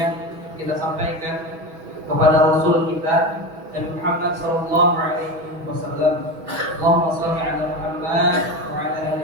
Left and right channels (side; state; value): left; late; 6.2 ms